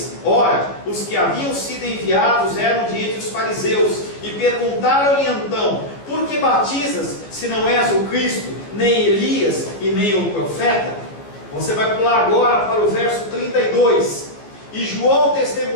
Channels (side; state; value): right; late; 14 ms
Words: ora, os que haviam sido enviados eram de entre os fariseus, e perguntaram-lhe então: por que batizas, se não és o Cristo, nem Elias e nem o profeta? Você vai pular agora para o verso 32. E João